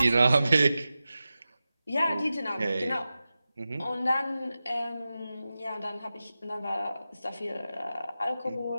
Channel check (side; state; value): both; inverted; correlation -0.94